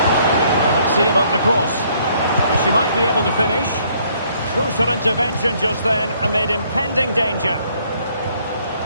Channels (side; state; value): both; inverted; correlation -0.65